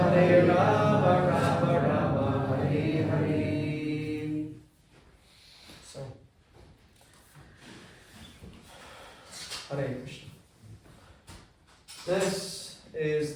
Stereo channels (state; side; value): identical; both; correlation 1.00